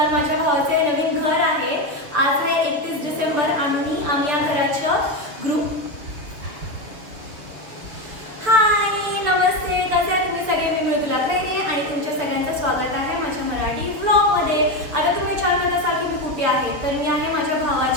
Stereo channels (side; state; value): left; late; 6.9 ms